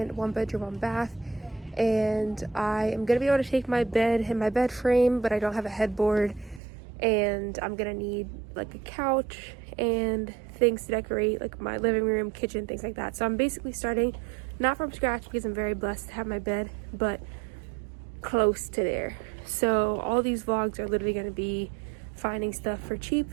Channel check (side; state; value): left; drops out; at 6.6 s